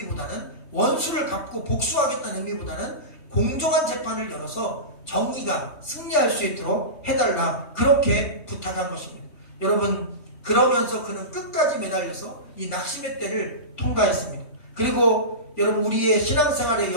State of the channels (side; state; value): right; late; 3.2 ms